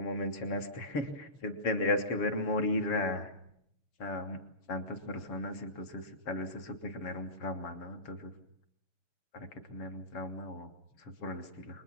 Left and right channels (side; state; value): right; late; 7.1 ms